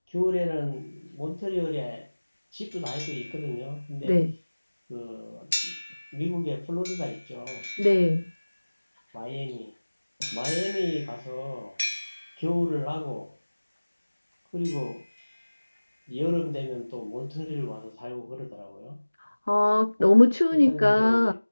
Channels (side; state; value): both; inverted; correlation -1.00